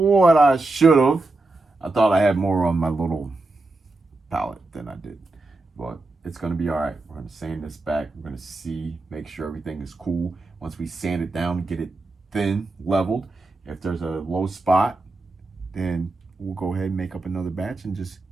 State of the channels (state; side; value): quieter; left; 3.1 dB